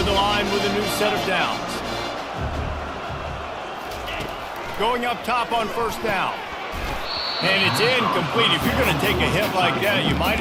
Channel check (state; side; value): identical; both; correlation 1.00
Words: the line with a new set of downs. Going up top on first down. And it's incomplete. If you're going to take a hit like that, you might